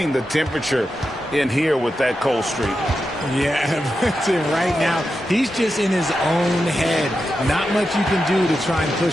the temperature in here with that cold streak. Yeah, right now, he's just in his own head. Not much you can do to try and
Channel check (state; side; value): normal; both; correlation 0.89